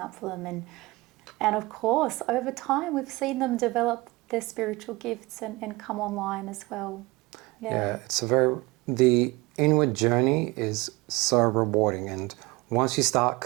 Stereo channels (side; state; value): left; quieter; 22.6 dB